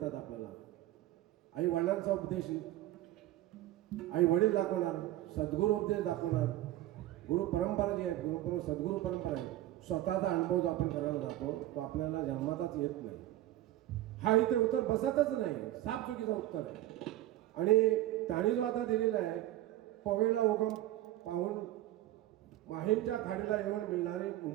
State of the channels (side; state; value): left; quieter; 14.8 dB